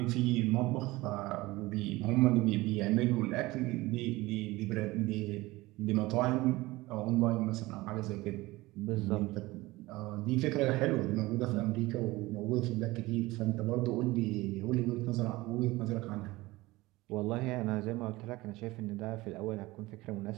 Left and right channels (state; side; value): quieter; left; 20.1 dB